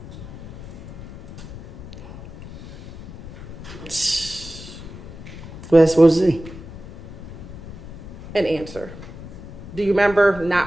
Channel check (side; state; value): left; noise; rumble, 13 dB below the sound